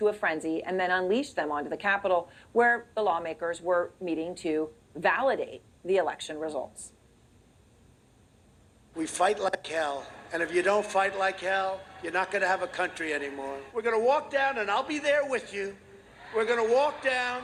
a frenzy and then unleashed them onto the Capitol, where the lawmakers were meeting to validate the election results. We fight like hell, and if you don't fight like hell, you're not going to have a country anymore. We're going to walk down, and I'll be there with you. We're going to walk down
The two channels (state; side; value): identical; both; correlation 1.00